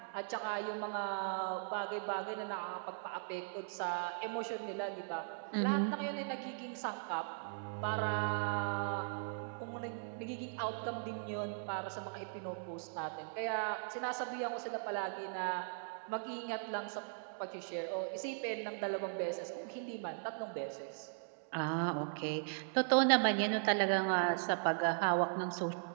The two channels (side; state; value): left; silent; digital silence